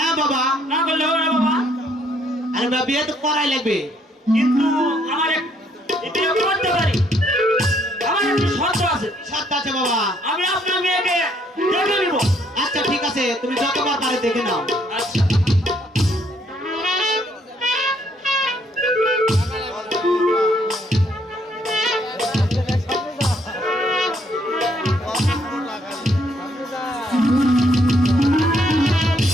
বাবা। না করলে হবে না বাবা। আরে বাবা, বিয়ে তো করাই লাগবে। কিন্তু আমার বিয়ে করতে পারি, আমার একটি শর্ত আছে। সত্য আছে বাবা। আমি আপনার মেয়েকে দেখে নিব। আচ্ছা ঠিক আছে, তুমি যতবার পারে দেখে নাও। আচ্ছা।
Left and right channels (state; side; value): normal; both; correlation 0.68